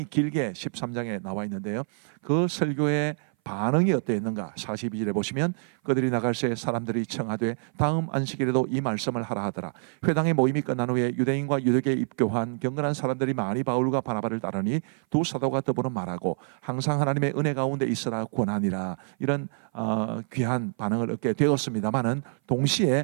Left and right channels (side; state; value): left; silent; 58 dB below the other